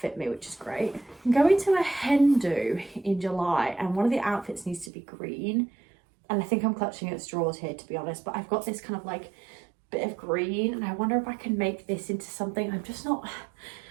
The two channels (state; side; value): drops out; left; at 4.9 s